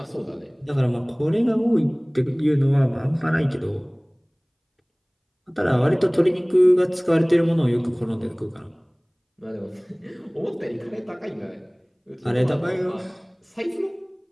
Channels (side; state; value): both; identical; correlation 1.00